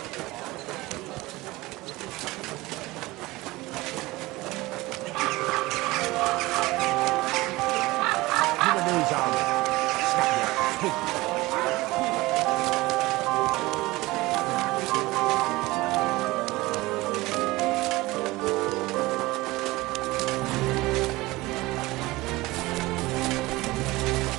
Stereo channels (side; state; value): left; quieter; 20.3 dB